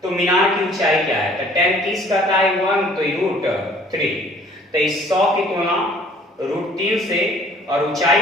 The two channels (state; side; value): normal; both; correlation 0.55